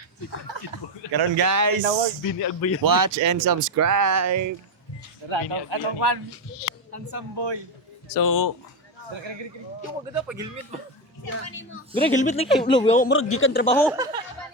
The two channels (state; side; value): normal; both; correlation 0.10